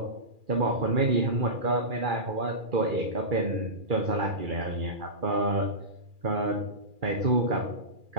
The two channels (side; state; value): left; late; 2.4 ms